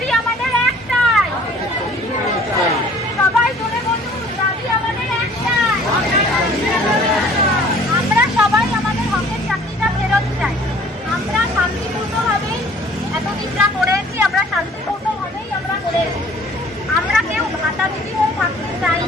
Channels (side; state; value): both; normal; correlation 0.53